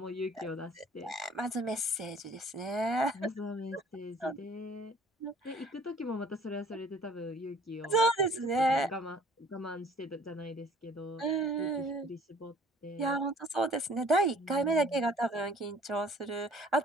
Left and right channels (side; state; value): both; normal; correlation 0.54